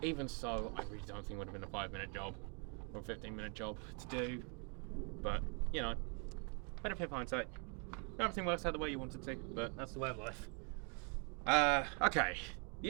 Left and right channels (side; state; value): left; quieter; 37.7 dB